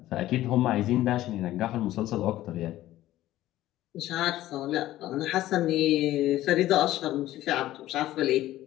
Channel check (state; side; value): quieter; right; 14.7 dB